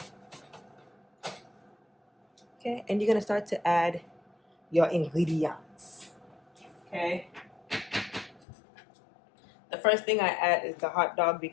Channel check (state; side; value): drops out; right; at 8.4 s